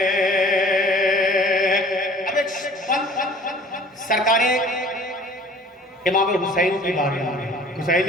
अब एक सरकारें इमाम हुसैन की बात है।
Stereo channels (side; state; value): both; normal; correlation 0.49